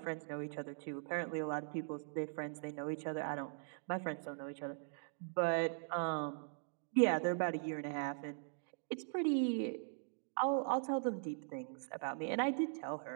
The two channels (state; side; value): silent; left; digital silence